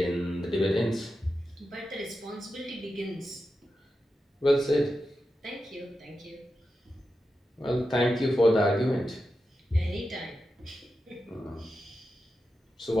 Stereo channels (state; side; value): normal; both; correlation 0.90